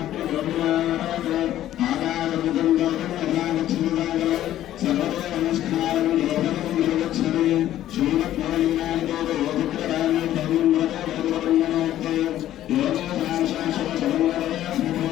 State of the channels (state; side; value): quieter; right; 12.8 dB